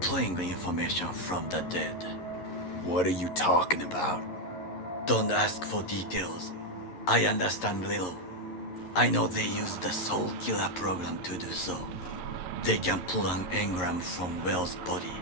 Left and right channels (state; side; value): late; right; 11 ms